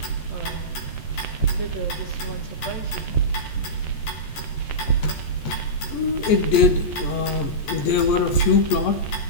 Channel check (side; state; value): right; late; 14 ms